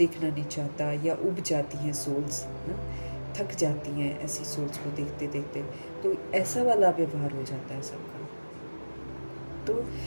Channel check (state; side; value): inverted; both; correlation -1.00